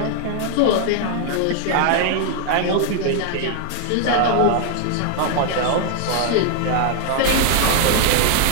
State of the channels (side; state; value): both; different; correlation 0.00